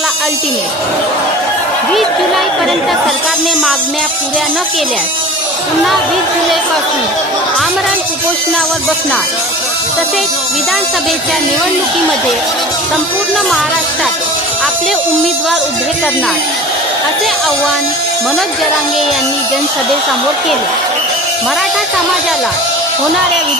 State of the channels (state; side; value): normal; both; correlation 0.37